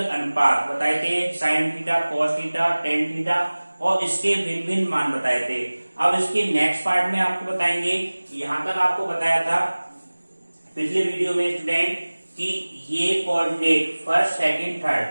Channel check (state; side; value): inverted; both; correlation -1.00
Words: अनुपात बताए थे, sign theta, cos theta, tan theta, और इसके भिन्न भिन्न मान बताए थे। अब इसके नेक्स्ट पार्ट में आपको बताएंगे। यहाँ तक आपको बताया था पिछले वीडियो में स्टूडेंट कि ये coordinate first second